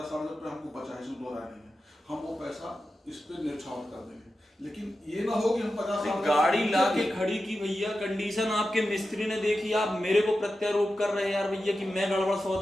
रुपये हमको बचा है, इसमें 2 राय नहीं है, हम वो पैसा इस पे न्यौछावर कर देंगे। लेकिन ये ना हो कि हम 50 गाड़ी लाके खड़ी की भैया, कंडीशन आपके मिस्त्री ने देखी, आप मेरे को प्रत्यारोप कर रहे हैं यार भैया कि मैं गड़बड़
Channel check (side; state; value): both; normal; correlation 0.91